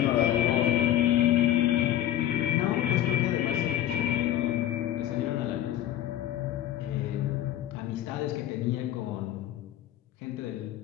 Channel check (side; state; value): right; quieter; 12.2 dB